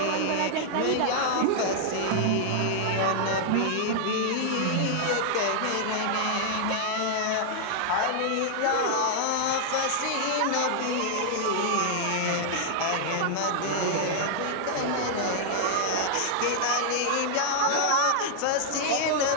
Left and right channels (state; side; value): different; both; correlation -0.01